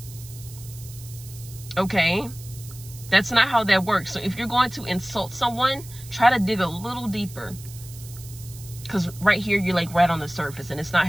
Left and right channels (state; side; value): noise; right; hiss, 17 dB below the sound